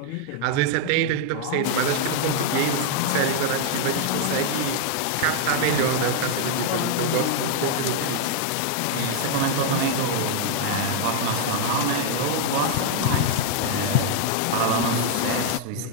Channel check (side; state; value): both; different; correlation 0.00